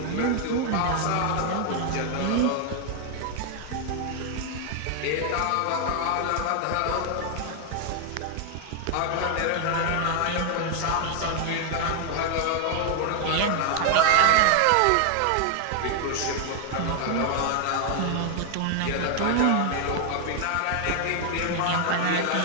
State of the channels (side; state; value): both; different; correlation 0.00